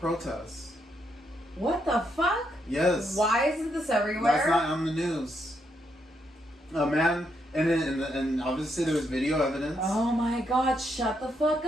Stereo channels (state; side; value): normal; both; correlation 0.78